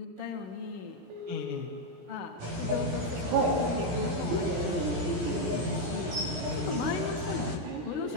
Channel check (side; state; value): left; late; 17 ms